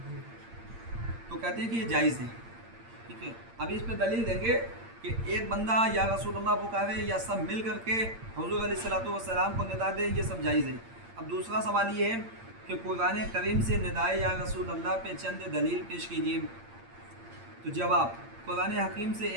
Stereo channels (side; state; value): left; late; 8.7 ms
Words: تو کہتے ہیں کہ یہ جائز ہے، ٹھیک ہے۔ ابھی اس پہ دلیل دیں گے کہ ایک بندہ یا رسول اللہ پکارے یا سب مل کر کے حضور علیہ الصلوۃ والسلام کو ندا دے، یہ سب جائز ہے۔ اب دوسرا سوال یہ ہے کہ قرآن کریم سے ندائے یا رسول اللہ پہ چند دلیل پیش کیجیے۔ تو جواب، قرآن حکیم سے